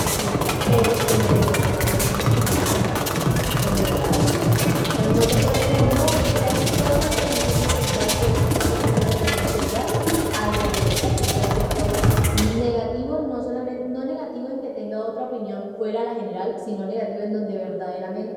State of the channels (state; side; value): identical; both; correlation 1.00